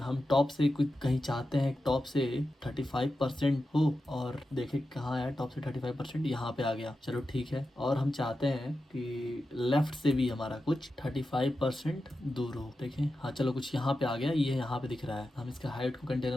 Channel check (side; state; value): both; normal; correlation 0.91